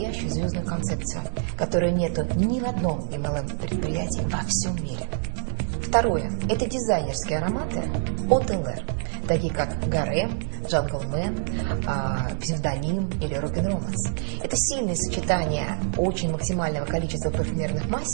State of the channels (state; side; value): silent; left; 61 dB below the other